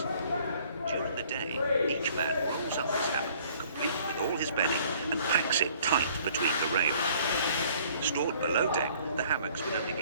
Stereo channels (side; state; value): both; inverted; correlation -0.57